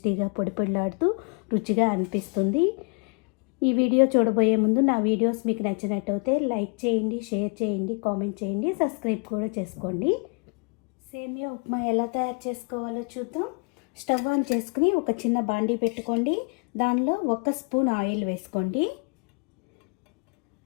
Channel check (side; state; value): right; quieter; 36.1 dB